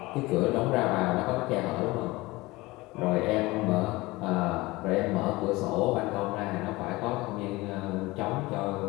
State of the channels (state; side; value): quieter; right; 21.2 dB